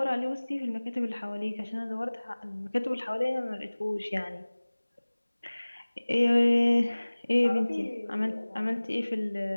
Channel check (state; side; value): inverted; both; correlation -1.00